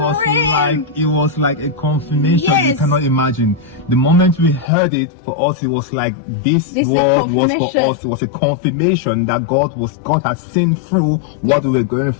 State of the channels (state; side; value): drops out; right; at 4.7 s